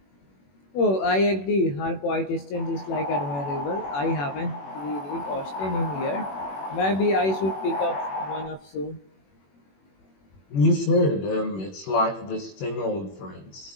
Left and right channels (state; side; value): late; right; 21 ms